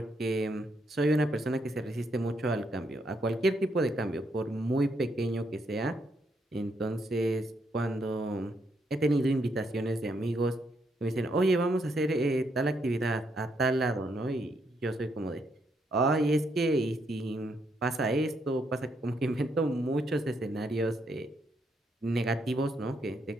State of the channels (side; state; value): both; normal; correlation 0.76